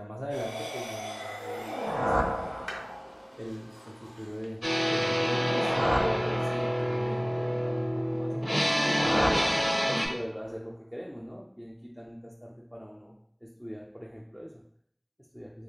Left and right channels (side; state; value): both; identical; correlation 1.00